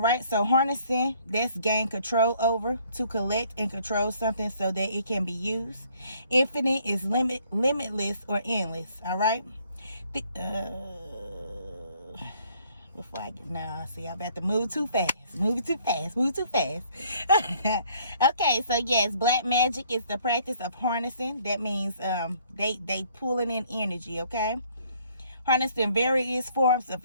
so harnessing, that's gain control over, to collect and control something so that it can be used. Infinite is limitless or endless. All right. Before I get, no, see, I'm about to move too fast. Move too fast. Okay, so yes, black magic is the practice of harnessing. That means they pulling in energy. Okay. Harnessing various forms of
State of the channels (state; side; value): inverted; both; correlation -0.62